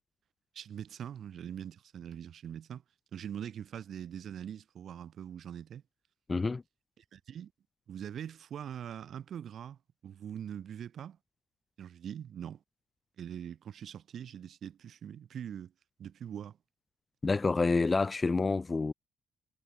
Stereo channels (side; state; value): both; normal; correlation 0.89